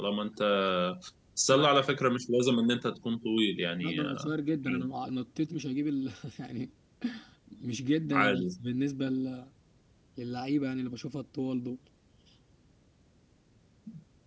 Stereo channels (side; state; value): both; identical; correlation 1.00